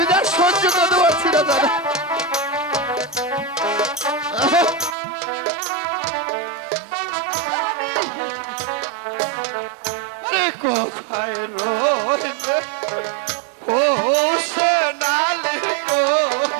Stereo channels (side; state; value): left; drops out; at 5.0 s